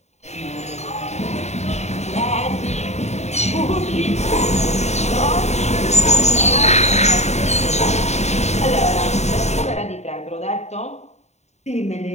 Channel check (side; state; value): right; late; 0.32 ms